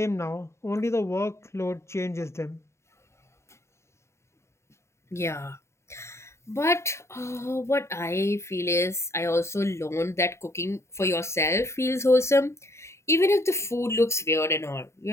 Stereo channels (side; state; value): right; late; 0.13 ms